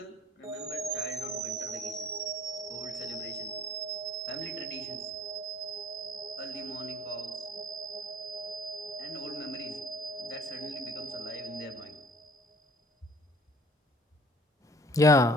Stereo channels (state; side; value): normal; both; correlation 0.53